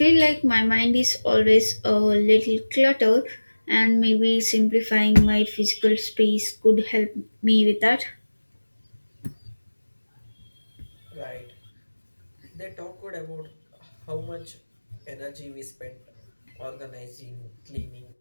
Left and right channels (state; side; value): inverted; both; correlation -1.00